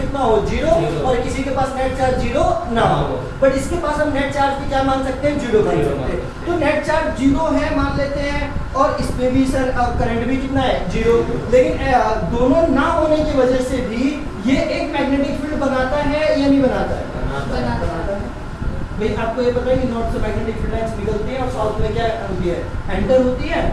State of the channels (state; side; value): identical; both; correlation 1.00